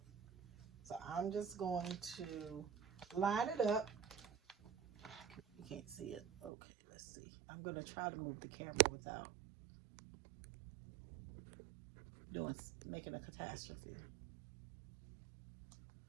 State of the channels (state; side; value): drops out; left; at 6.5 s